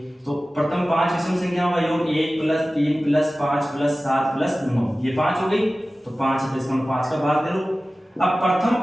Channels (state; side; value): normal; both; correlation 0.96